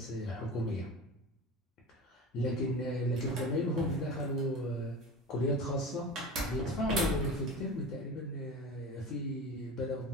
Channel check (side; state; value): both; normal; correlation 0.31